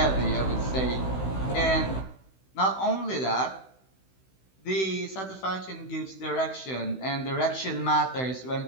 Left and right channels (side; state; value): right; late; 16 ms